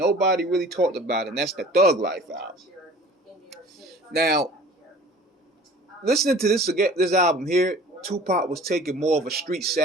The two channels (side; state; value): both; normal; correlation 0.46